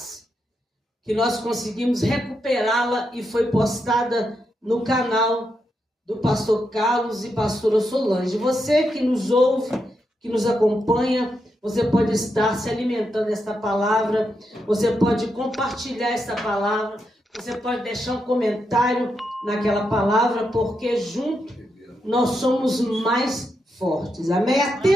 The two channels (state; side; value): normal; both; correlation 0.83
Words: que nós conseguimos recuperá-la e foi postada no canal do pastor Carlos e pastora Solange. Você que nos ouve, que nos acompanha, você pode estar se alimentando desta palavra, você pode compartilhar esta palavra, você pode deixar um comentário naquela palavra, porque junto nós somos mais fortes. Amém?